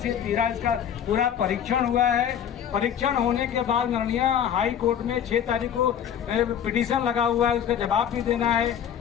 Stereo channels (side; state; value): right; quieter; 9.1 dB